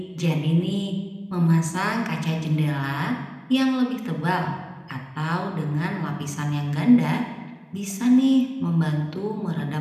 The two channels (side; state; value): both; identical; correlation 1.00